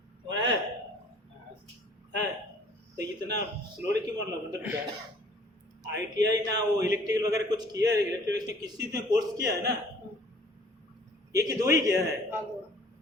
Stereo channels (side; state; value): both; normal; correlation 0.54